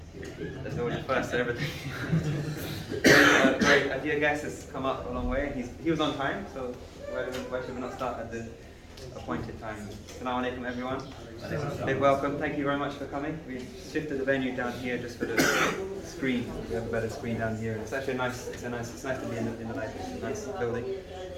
there's always a first to everything. Great, a dear guest has come up a long way. He was on time, so why should we not start at the appointed time? Assalamu alaikum, everyone. Big welcome. Thank you very much for coming. We've shifted the venue down here just for the screen. We have a better screen down here. It's actually nice. It's nice to be in the nice building.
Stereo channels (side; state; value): both; identical; correlation 1.00